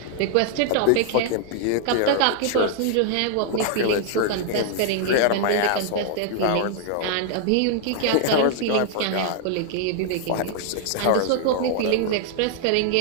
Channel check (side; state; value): both; different; correlation 0.00